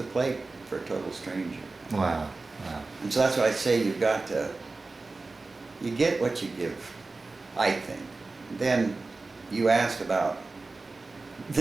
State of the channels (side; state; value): left; quieter; 3.6 dB